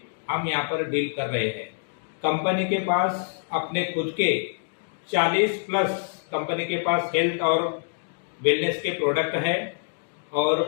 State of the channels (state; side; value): silent; right; digital silence